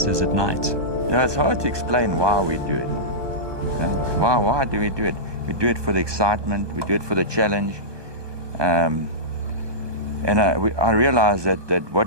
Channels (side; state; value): left; late; 1.2 ms